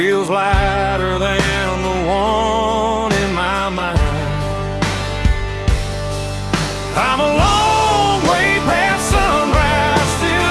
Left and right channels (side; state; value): both; identical; correlation 1.00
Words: lighter than the one in my mind. I'm a long way past sunrise,